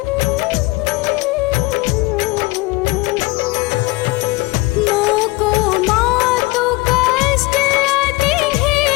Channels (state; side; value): quieter; right; 22.0 dB